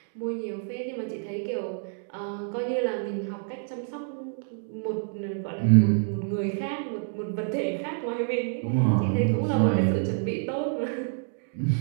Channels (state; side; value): silent; left; 60 dB below the other